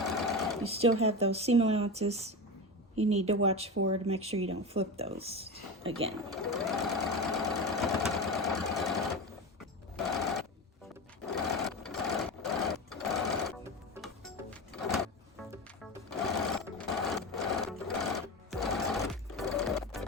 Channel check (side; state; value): both; normal; correlation 0.23